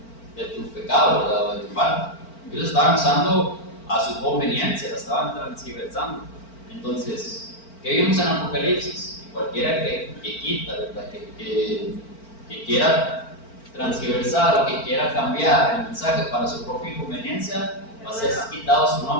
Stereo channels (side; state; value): right; late; 4.4 ms